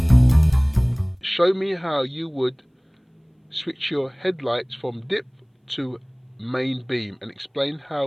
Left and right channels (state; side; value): identical; both; correlation 1.00